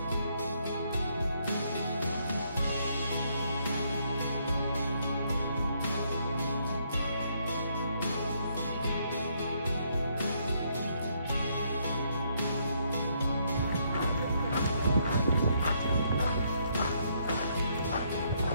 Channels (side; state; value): both; inverted; correlation -0.72